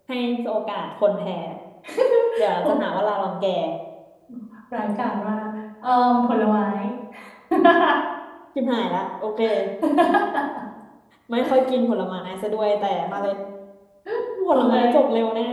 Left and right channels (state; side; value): identical; both; correlation 1.00